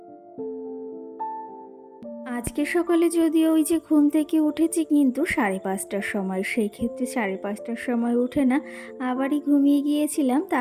আজকে সকালে যদিও ওই যে ঘুম থেকে উঠেছি কিন্তু 5:30টার সময়, সেই ক্ষেত্রে 5:30টার সময় উঠে না আবারই ঘুমিয়ে গিয়েছিলাম।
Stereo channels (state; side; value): identical; both; correlation 1.00